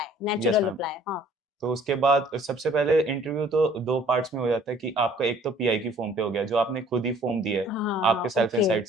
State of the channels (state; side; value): normal; both; correlation 0.55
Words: yes natural ma'am. Reply. हाँ। तो उसके बाद सबसे पहले इंटरव्यू तो 2 पार्ट्स में हो जाता है कि आपका एक तो पीआई की फॉर्म पे हो गया, जो आपने खुद ही फॉर्म दिया है, आपके हाँ, सेल्फ ओके। इनसाइट्स